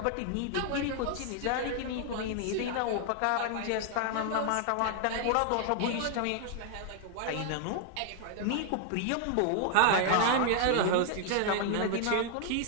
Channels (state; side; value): different; both; correlation 0.00